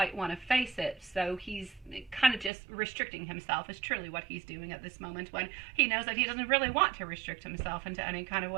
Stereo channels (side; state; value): left; drops out; at 2.5 s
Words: want to face it. So he's kind of just restricting himself is truly what he's doing at this moment, when he knows that he doesn't really want to restrict himself into any kind of